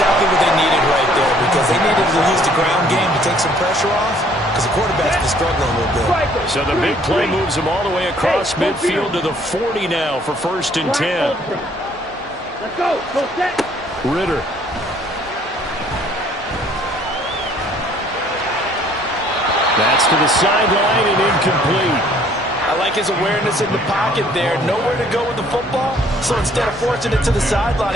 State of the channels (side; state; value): both; normal; correlation 0.60